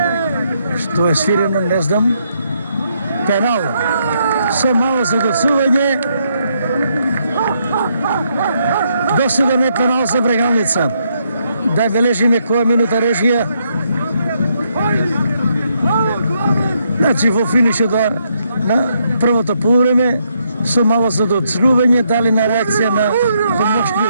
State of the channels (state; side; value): inverted; both; correlation -0.75